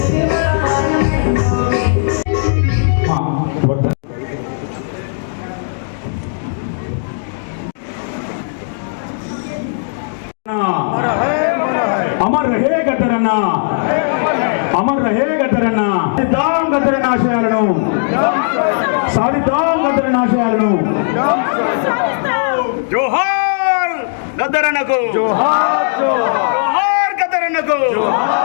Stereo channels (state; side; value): silent; right; digital silence